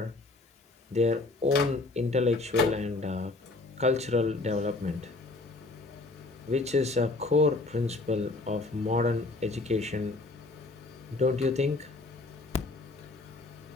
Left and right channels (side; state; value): right; quieter; 3.2 dB